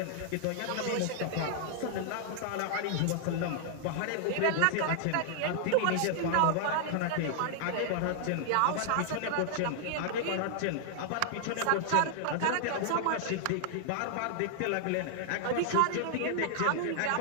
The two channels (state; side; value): different; both; correlation -0.01